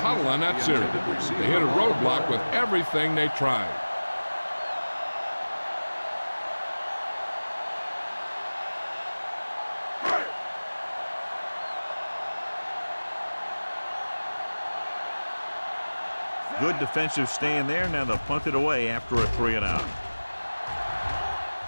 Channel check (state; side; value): inverted; both; correlation -1.00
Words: on that series. They hit a roadblock with everything they tried. Good defensive stand there. Now they'll punt it away after a 3-and-out.